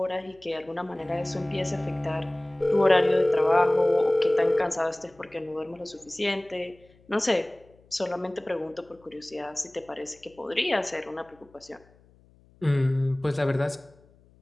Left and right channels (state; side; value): noise; left; hum, 29 dB below the sound